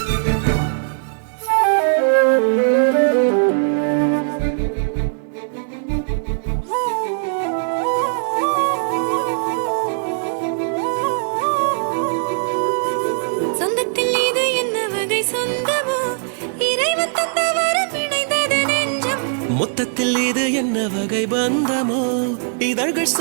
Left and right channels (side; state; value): left; silent; digital silence